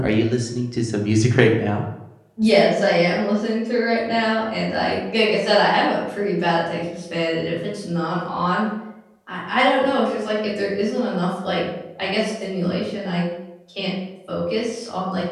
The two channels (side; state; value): both; identical; correlation 1.00